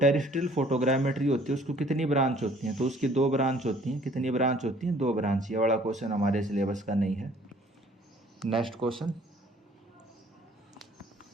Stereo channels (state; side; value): normal; both; correlation 0.56